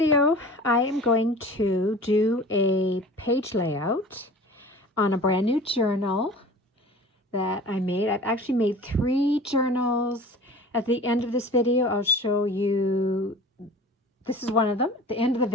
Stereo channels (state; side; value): normal; both; correlation 0.41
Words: I am going to do a page layout on a brand new journal that I made. I've actually made 3 journals. At the end of this video, I'll show you, this is one of them. At the end of the